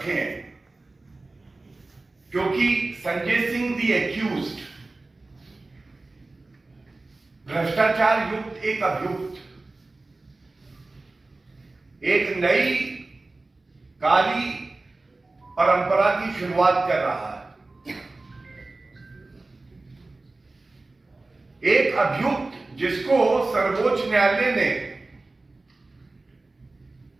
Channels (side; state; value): left; quieter; 3.2 dB